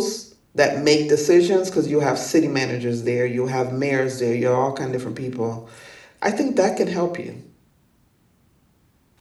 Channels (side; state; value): both; identical; correlation 1.00